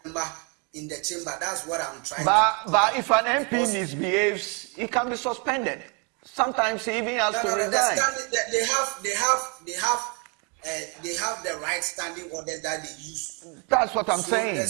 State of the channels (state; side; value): quieter; left; 34.3 dB